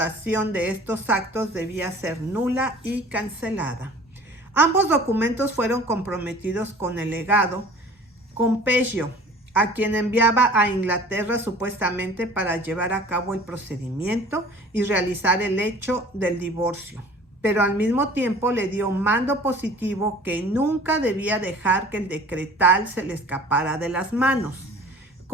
de estos actos debía ser nula y cancelada. Ambos documentos fueron comprometidos con el legado Compegio, a quien enviaba a Inglaterra supuestamente para llevar a cabo el procedimiento y realizar el hecho del divorcio, pero al mismo tiempo le dio mando positivo que nunca debía dejar que el decretal se le escapara de las manos.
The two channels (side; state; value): both; normal; correlation 0.46